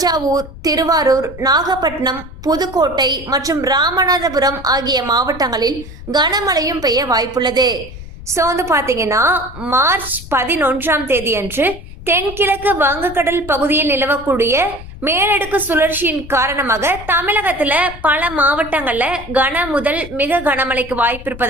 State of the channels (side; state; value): left; noise; rumble, 14 dB below the sound